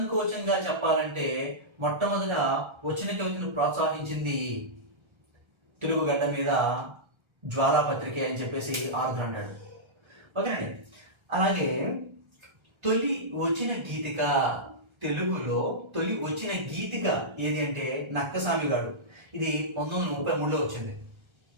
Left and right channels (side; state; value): left; late; 1.3 ms